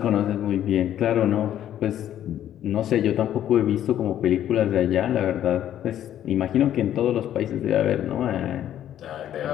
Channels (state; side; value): quieter; right; 11.2 dB